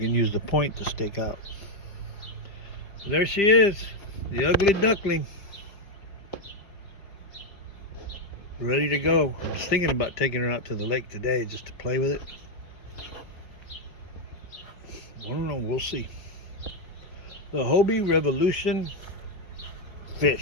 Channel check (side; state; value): right; late; 5.0 ms